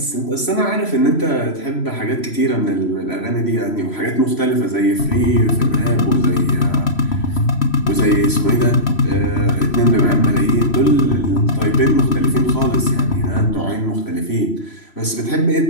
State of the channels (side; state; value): right; late; 3.1 ms